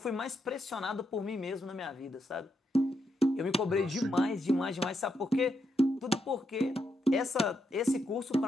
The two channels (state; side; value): normal; both; correlation 0.81